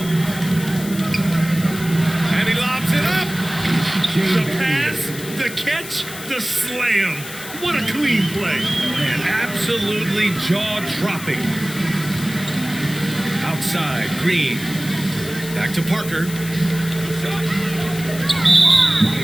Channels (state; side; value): noise; left; hiss, 12 dB below the sound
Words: And he lobs it up. The pass, the catch, the slam. What a clean play. And absolutely jaw-dropping. Outside, Green. Back to Parker.